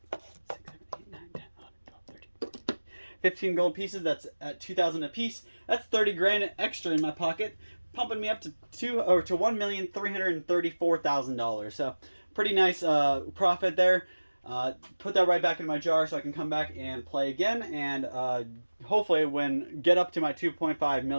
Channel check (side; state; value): both; inverted; correlation -1.00